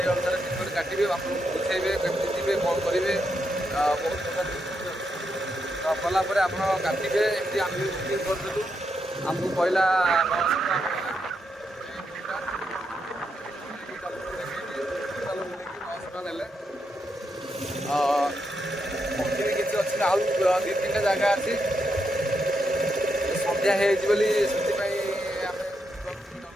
ଅନୁସାରେ ଟିକେଟ୍ କାଟିବେ, ଆପଣଙ୍କୁ ବୁଝେଇବେ କେମିତି ଯିବେ କ'ଣ କରିବେ। ବହୁତ ପ୍ରକାର କଲା ପରେ ଆପଣ କାଟିବେ। ଏମିତି ଆମେ ବି ବୁକିଂ କରିଦେଲୁ। ଆମକୁ କହିଲା 900 ଟଙ୍କା ନେଲେ। କିଛି ଅଛି ଆଉ 2-3ଟା ଜାଗା ଅଛି। ସନ୍ଧ୍ୟା ହେଇଯାଇଛି ବୋଲି ସେଥିପାଇଁ ଆମେ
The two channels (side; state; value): both; normal; correlation 0.82